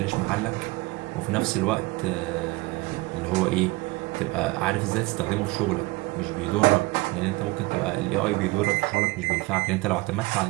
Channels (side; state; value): left; quieter; 22.5 dB